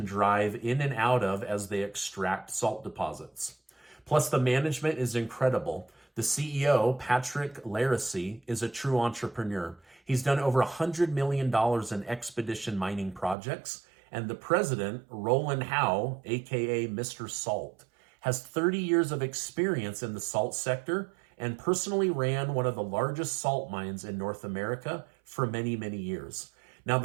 drive in and out of as they extract salt deposits. Plus, the management is incredible. The CEO, Patrick Laracy, is a true entrepreneur. He's done over $100 million in expedition mining projects, and the president, Roland Howe, aka Mr. Salt, has 30 years of experience in the salt sector and personally ran one of the largest salt mines in North America for many, many years. Now,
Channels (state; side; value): drops out; left; at 13.4 s